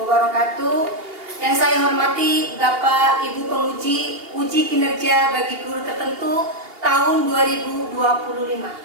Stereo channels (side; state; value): left; late; 2.8 ms